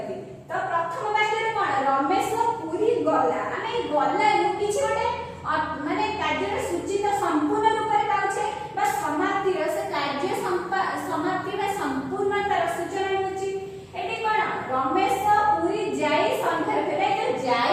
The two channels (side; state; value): both; identical; correlation 1.00